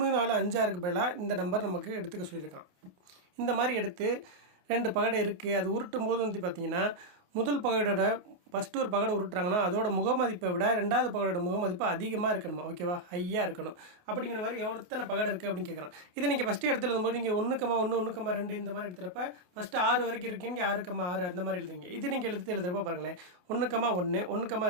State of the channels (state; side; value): late; left; 28 ms